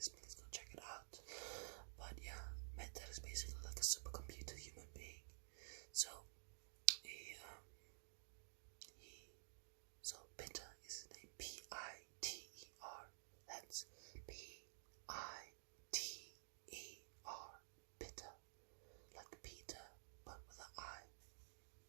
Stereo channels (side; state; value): left; silent; digital silence